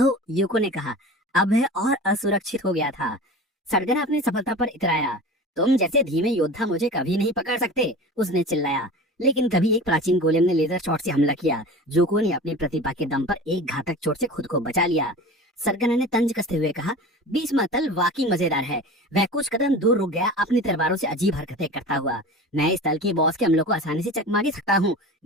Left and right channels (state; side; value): normal; both; correlation 0.35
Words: यूको ने कहा। अब वह और असुरक्षित हो गया था। सरगना अपनी सफलता पर इतराया। तुम जैसे धीमे योद्धा मुझे कभी नहीं पकड़ सकते, उसने चिल्लाया। लेकिन तभी एक प्राचीन गोलेम ने लेजर शॉट से हमला किया। यूको ने अपनी प्रतिभा के दम पर एक घातक चोट से खुद को बचा लिया। सरगना ने तंज कसते हुए कहा, बीच तल वाकई मजेदार है। वह कुछ कदम दूर रुक गया, अपनी तलवारों से अजीब हरकतें करता हुआ। मैं इस तल के बॉस के हमलों को आसानी से चकमा दे सकता हूँ।